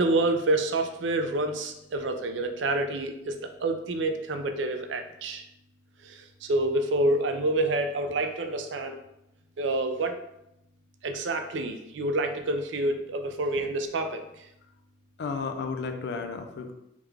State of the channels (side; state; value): both; normal; correlation 0.11